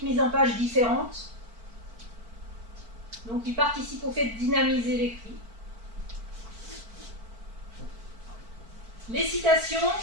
mise en page différente. Donc, il participe au fait de dynamiser l'écrit. Les citations,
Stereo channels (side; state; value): left; late; 4.5 ms